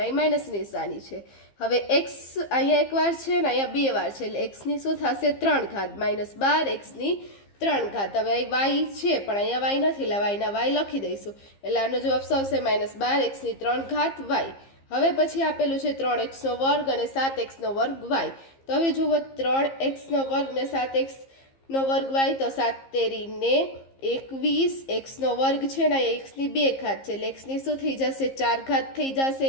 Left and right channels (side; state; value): right; late; 15 ms